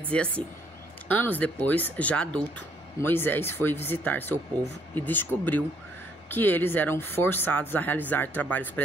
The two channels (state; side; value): normal; both; correlation 0.67